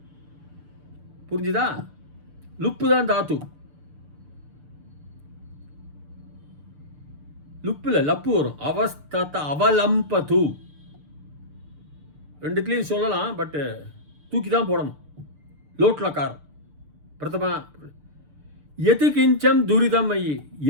புரிஞ்சுதா? லுப்பு தான் தாத்து. லுப்புல லப்பு வரும். அவஸ்தத அவலம்பது ரெண்டுத்துலையும் சொல்லலாம், பட் தூக்கி தான் போடணும். லோட்லக்காரம் பிரதமா. எது கிஞ்சம் துரிதம் ஐயி.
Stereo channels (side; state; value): left; late; 6.8 ms